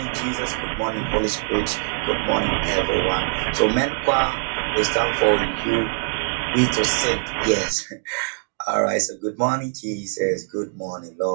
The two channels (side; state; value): left; silent; digital silence